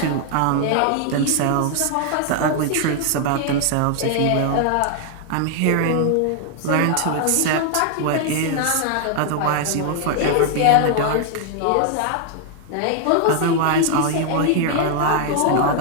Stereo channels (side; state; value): both; different; correlation 0.00